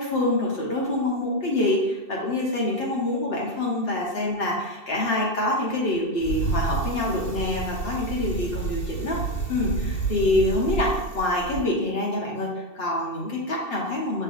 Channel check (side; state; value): right; late; 2.7 ms